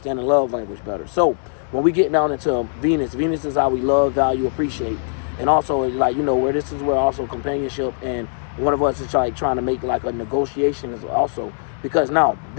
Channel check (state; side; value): silent; right; digital silence